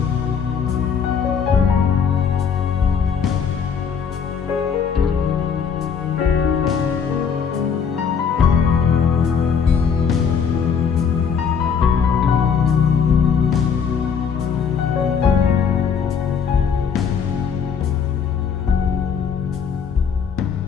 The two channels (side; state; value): right; quieter; 6.6 dB